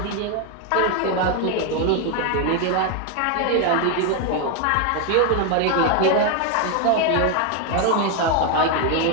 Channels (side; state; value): both; different; correlation 0.01